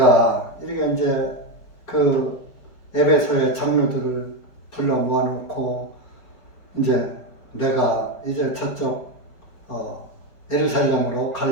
이렇게 이제 그 에베소의 장로들을 불러 모아놓고 이제 내가 이제 저쪽 예루살렘으로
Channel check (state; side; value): late; right; 5.0 ms